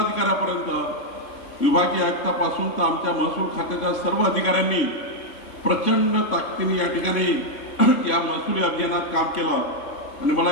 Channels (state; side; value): late; right; 3.0 ms